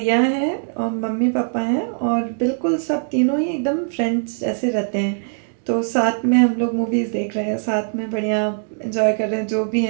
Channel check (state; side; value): silent; left; digital silence